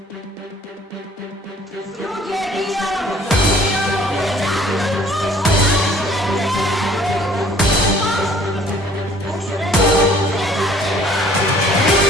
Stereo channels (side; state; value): both; normal; correlation 0.55